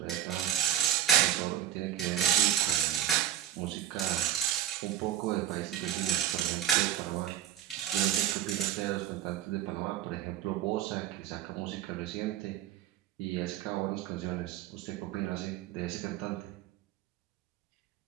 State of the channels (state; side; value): quieter; left; 11.3 dB